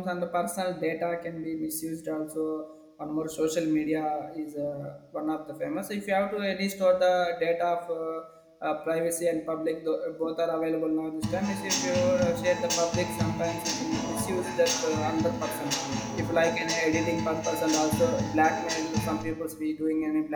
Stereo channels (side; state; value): both; identical; correlation 1.00